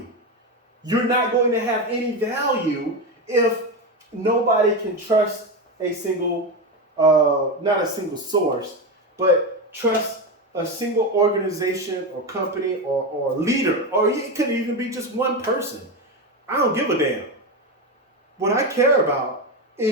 You're not going to have any value if nobody can trust a single, not a single source, but trust a single organization or company or leader, or it could even be just one person. I don't give a damn. What I care about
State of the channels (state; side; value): normal; both; correlation 0.15